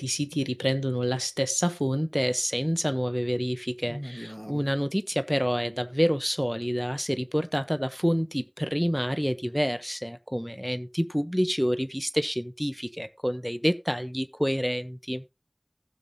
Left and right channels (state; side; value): identical; both; correlation 1.00